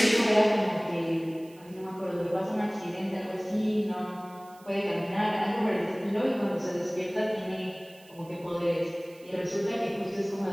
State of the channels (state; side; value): noise; right; hiss, 26 dB below the sound